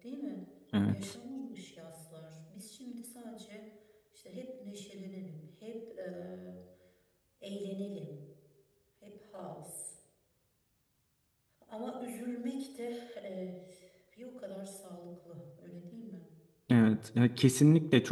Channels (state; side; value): identical; both; correlation 1.00